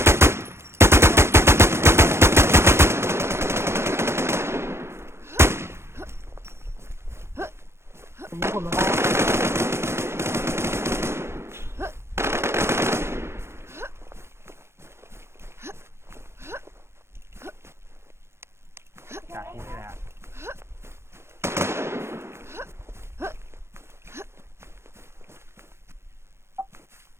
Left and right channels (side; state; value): left; late; 0.12 ms